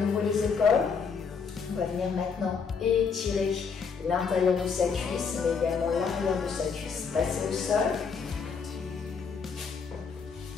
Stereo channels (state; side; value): quieter; right; 5.7 dB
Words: les épaules. On va venir maintenant étirer l'intérieur de sa cuisse, mais également l'arrière de sa cuisse. Passez au sol.